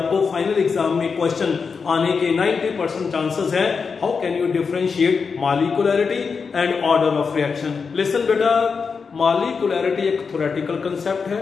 फाइनल एग्जाम में क्वेश्चन आने के 90% चांसेस हैं। How can you differentiate molecularity and order of reaction. Listen बेटा, मॉलिक्यूलरिटी एक थ्योरेटिकल कंसेप्ट है,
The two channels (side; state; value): right; quieter; 5.4 dB